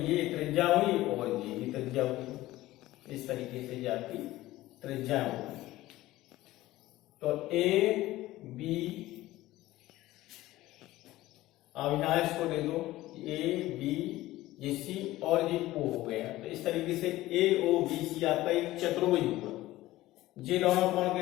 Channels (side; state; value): right; quieter; 16.7 dB